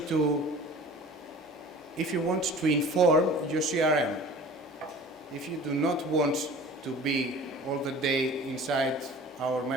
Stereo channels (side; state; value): both; normal; correlation 0.43